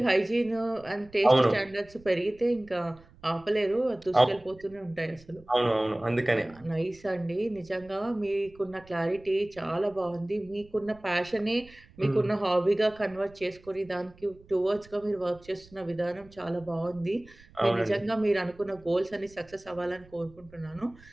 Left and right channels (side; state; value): right; noise; rumble, 25 dB below the sound